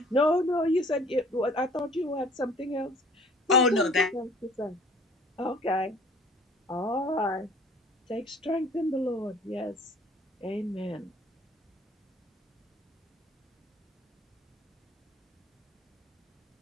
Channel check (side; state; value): both; normal; correlation 0.51